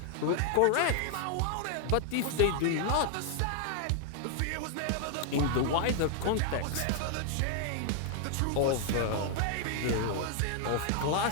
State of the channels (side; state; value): both; different; correlation 0.00